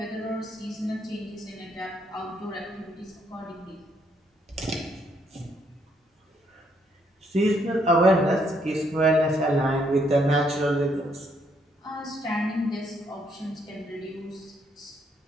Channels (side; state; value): both; normal; correlation 0.72